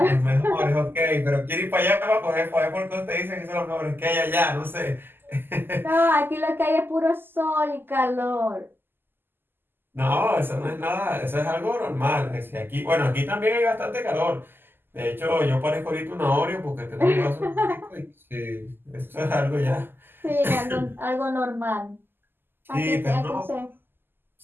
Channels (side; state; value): left; late; 0.097 ms